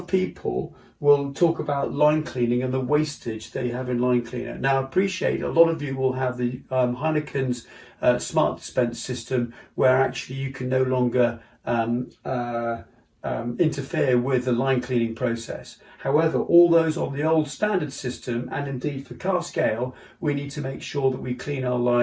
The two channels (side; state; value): both; identical; correlation 1.00